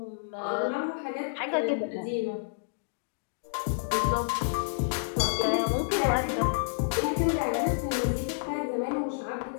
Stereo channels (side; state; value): right; silent; digital silence